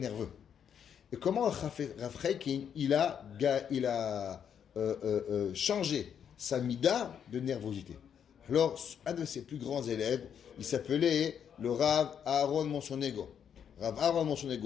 Et comment Rav Chaikin, il a changé sa mida de nervosité. Alors, un de ses plus grands élèves, il s'appelait le Rav Aaron Monsonego. Rav Aaron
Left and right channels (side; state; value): right; quieter; 8.2 dB